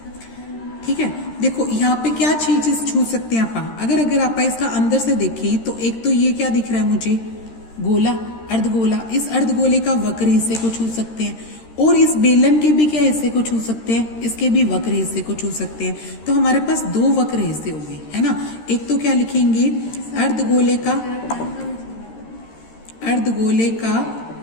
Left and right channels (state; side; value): late; right; 13 ms